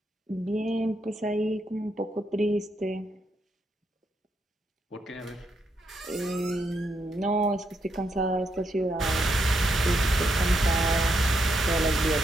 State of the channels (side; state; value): both; normal; correlation 0.79